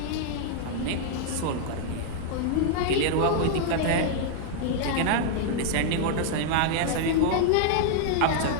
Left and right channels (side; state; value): both; different; correlation -0.01